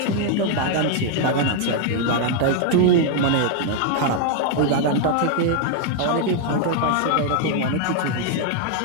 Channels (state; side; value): different; both; correlation 0.00